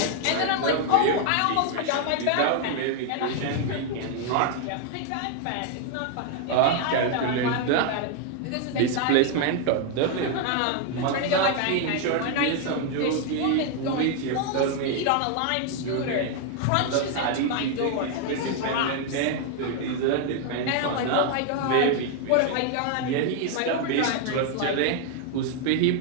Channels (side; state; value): both; different; correlation 0.00